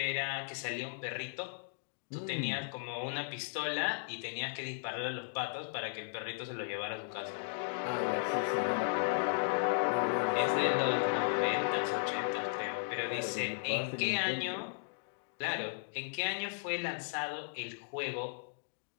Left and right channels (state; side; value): silent; right; digital silence